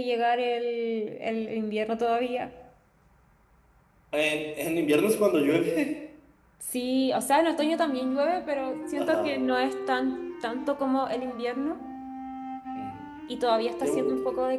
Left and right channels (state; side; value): identical; both; correlation 1.00